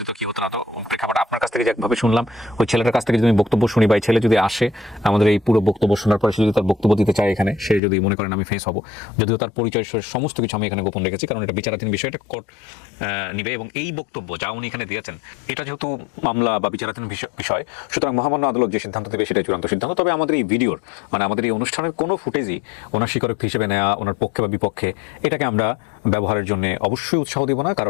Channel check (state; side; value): drops out; right; at 7.8 s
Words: কি হতো না, তো প্রেক্ষাপট আপনার কাছ থেকে থেকে যে একভাবে শুনলাম, ওই ছেলেটার কাছ থেকে যদি আমি বক্তব্য শুনি বা এই ছেলে যদি আসে আমাদের এই পুরো বক্তব্য শোনার পরে সে যদি তার বক্তব্য দিতে চায় এখানে, সে যদি মনে করেন আমি ফেস হব, যদিও তার পরিচয় সমস্ত কিছু আমি এখানে গোপন রেখেছি, কারণ এটা বিচারাধীন বিষয়টা নিবে। এবং এই বক্তব্য যা উনি এখানে দিয়েছেন এটা যেহেতু মামলা বা বিচারাধীন বিষয়, সুতরাং মহামান্য আদালত যে সিদ্ধান্ত দেবে সেটাই চূড়ান্ত সিদ্ধান্ত। তবে আমাদের এই ভিডিওর মানে আমাদের এই অনুষ্ঠানের কোনো ফুটেজই ওনার স্বীকারোক্তি হিসেবে নেওয়া, ওনার পক্ষে বা বিপক্ষে এটাকে আমরা ব্যবহারের জন্য অবশ্যই উৎসাহ দেব না,